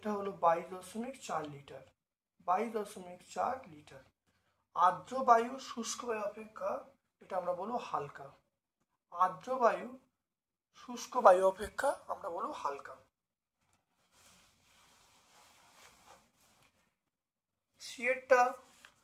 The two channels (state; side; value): identical; both; correlation 1.00